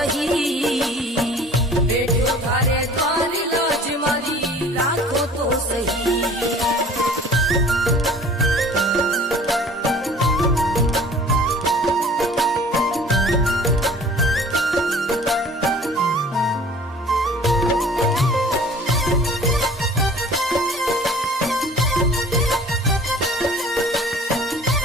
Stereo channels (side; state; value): both; normal; correlation 0.48